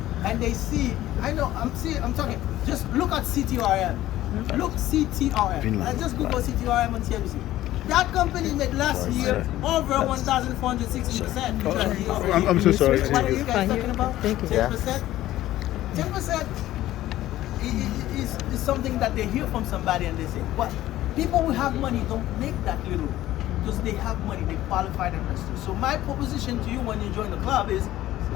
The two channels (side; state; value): right; quieter; 14.6 dB